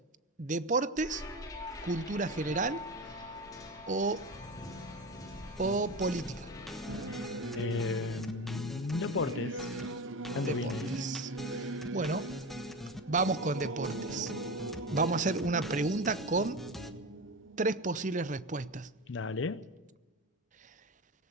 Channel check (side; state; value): both; normal; correlation 0.24